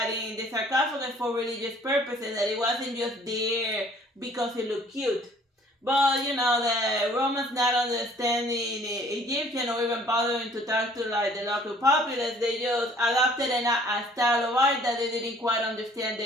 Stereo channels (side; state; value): both; normal; correlation 0.56